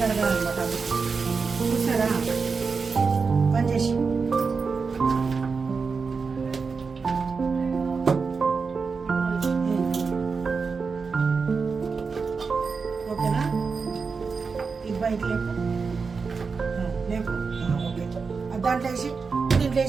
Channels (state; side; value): quieter; left; 5.0 dB